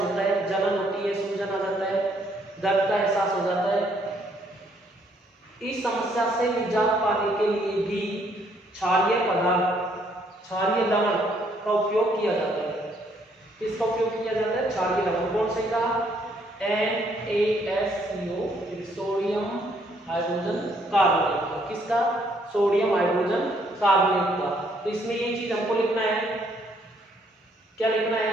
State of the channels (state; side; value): normal; both; correlation 0.68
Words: होता है। जलन होती है, सूजन आ जाता है, दर्द का एहसास हो जाता है। इस समस्या से निजात पाने के लिए भी क्षारीय पदार्थ, क्षारीय लवण का उपयोग किया जाता है। किसका उपयोग किया जाता है? क्षारीय लवण। कौन से का? NaSCO, sodium hydrogen carbonate. किसका? सोडियम हाइड्रोजन कार्बोनेट का। तो इसमें ये चीज हमको लिखना है, क्या लिखना